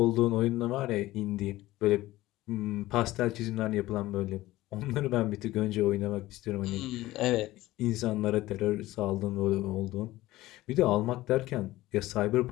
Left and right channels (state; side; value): quieter; right; 17.1 dB